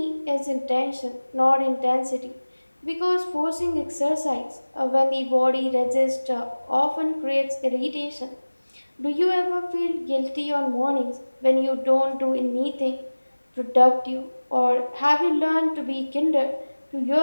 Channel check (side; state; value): both; inverted; correlation -1.00